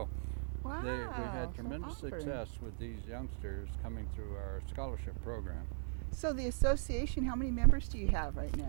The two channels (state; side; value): silent; left; 52 dB below the other